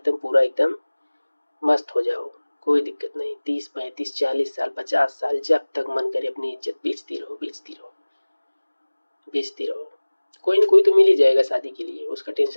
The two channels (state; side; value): inverted; both; correlation -1.00